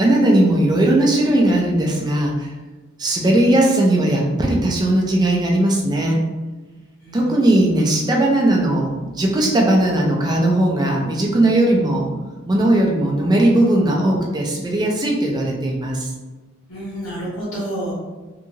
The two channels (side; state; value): both; normal; correlation 0.76